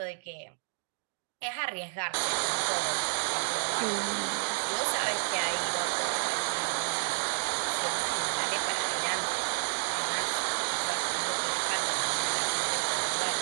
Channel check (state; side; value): silent; left; digital silence